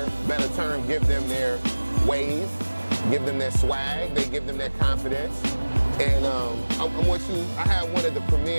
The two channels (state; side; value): inverted; both; correlation -1.00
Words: better term, give them their wave, give them their swag, they give them their confidence. And I have one of the